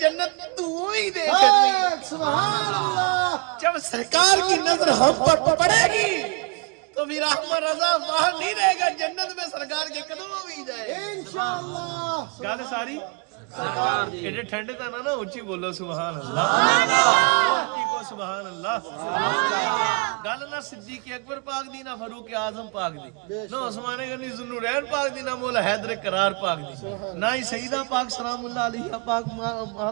جنت تو ہی دیکھ. سبحان اللہ. جب سرکار کی نظر ہم پر پڑے گی تو پھر احمد رضا باہر نہیں رہے گا جنت میں سرکار کے قدموں میں ہی جائے انشاءاللہ. گال ساری ایڈے ٹھنڈے تھا نا اچھی بولو سبحان اللہ، اچھی کو سبحان اللہ۔ گل نہ صدیق اکبر پاک دی، نہ فاروق اعظم پاک دی، نہ عثمان غنی ذوالنورین پاک دی، نہ مولا حیدر کرار پاک دی، نہ ہی سیدہ پاک سلام اللہ علیہ پاک،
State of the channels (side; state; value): left; quieter; 30.0 dB